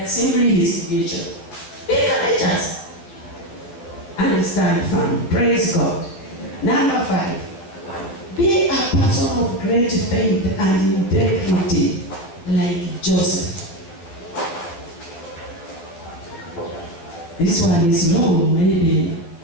are simply his creation. Be courageous and stand firm. Praise God. Number 5. Be a person of great faith and integrity like Joseph. This one is long, maybe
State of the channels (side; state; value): right; late; 12 ms